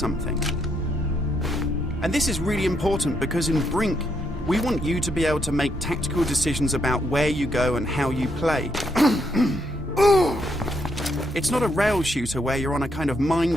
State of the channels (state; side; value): normal; both; correlation 0.76